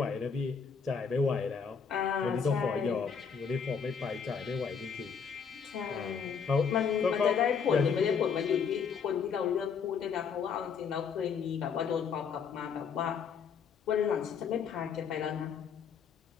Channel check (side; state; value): right; quieter; 6.4 dB